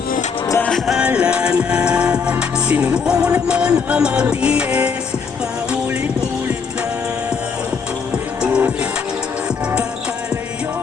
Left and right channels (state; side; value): quieter; right; 5.7 dB